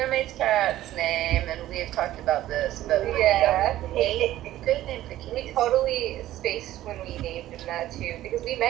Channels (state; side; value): quieter; left; 14.2 dB